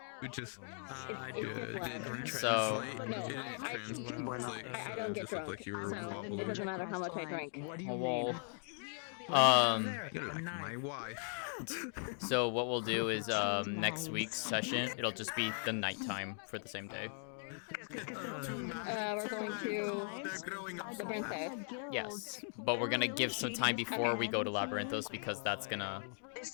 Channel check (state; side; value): silent; right; 52 dB below the other